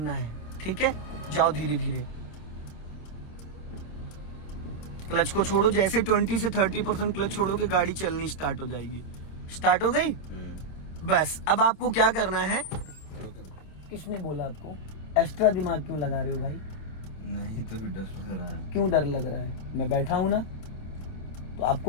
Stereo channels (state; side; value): late; right; 27 ms